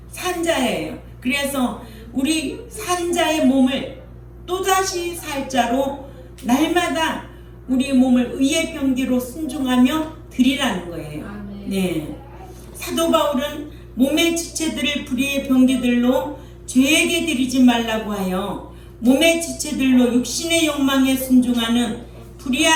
산자예요. 그래서 우리 산자의 몸을 또다시 살 자로 날마다 우리 몸을 의의 병기로 순종하며 드리라는 거예요. 아멘. 네. 사도 바울은 몸의 지체들을 불의의 병기들로 죄에게 드리지 말라고 하여 몸의 지체들로 육신의 욕망에 순종하는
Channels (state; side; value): identical; both; correlation 1.00